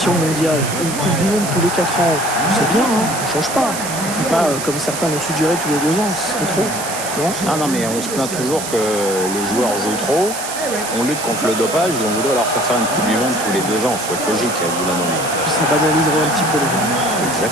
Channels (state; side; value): noise; right; hiss, 7 dB below the sound